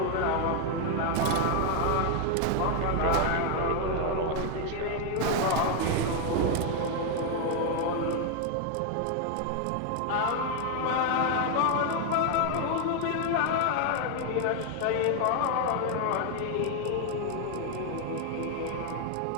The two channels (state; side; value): different; both; correlation 0.00